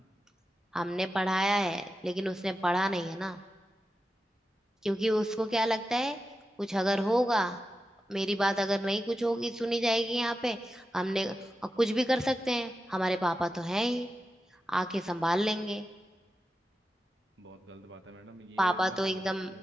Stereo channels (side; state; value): both; normal; correlation 0.90